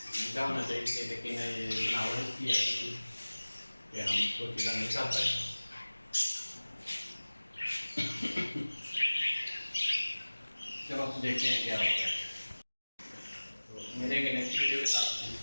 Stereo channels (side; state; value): both; inverted; correlation -1.00